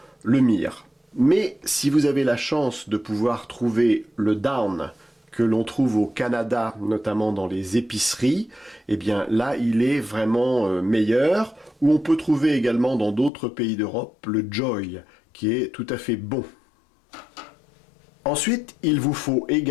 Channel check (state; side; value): drops out; right; at 13.3 s